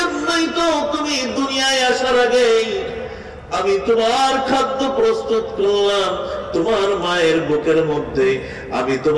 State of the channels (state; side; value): identical; both; correlation 1.00